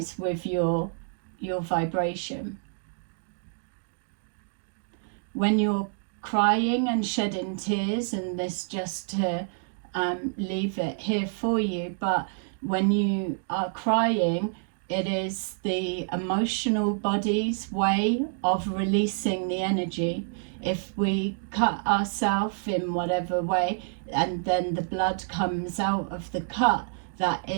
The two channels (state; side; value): silent; left; digital silence